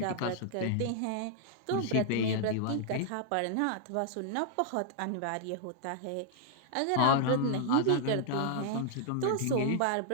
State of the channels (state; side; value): different; both; correlation -0.01